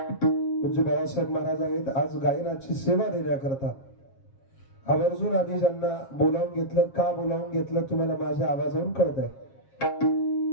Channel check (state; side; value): late; right; 7.4 ms